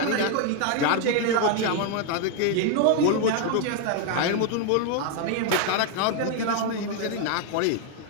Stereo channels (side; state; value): both; different; correlation 0.00